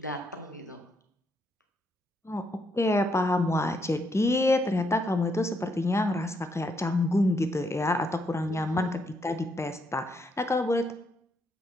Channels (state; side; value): normal; both; correlation 0.76